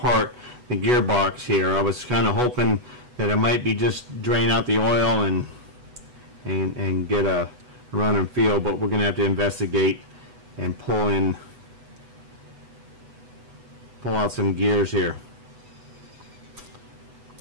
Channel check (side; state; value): left; late; 8.1 ms